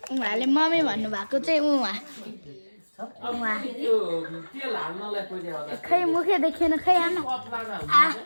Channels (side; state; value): both; inverted; correlation -1.00